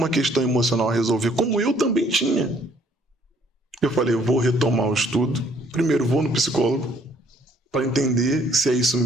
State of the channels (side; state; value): both; normal; correlation 0.63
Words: questão emocional a resolver, como eu também tinha. Eu falei, eu vou retomar o estudo. Primeiro, vou no psicólogo para entender se é isso